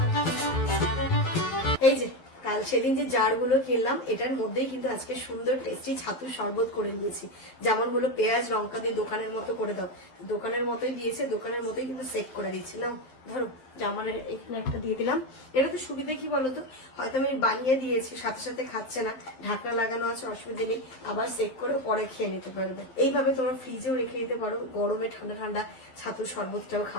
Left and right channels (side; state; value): right; late; 12 ms